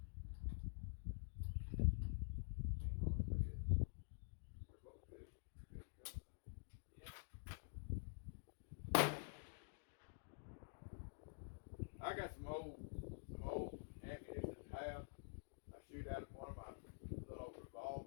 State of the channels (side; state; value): right; silent; digital silence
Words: They're both good company. Yeah. I got some old ammunition to have. I shoot out of one of my little